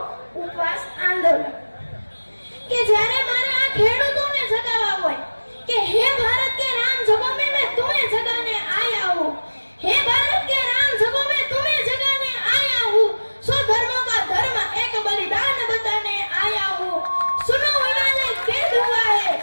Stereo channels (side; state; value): both; inverted; correlation -1.00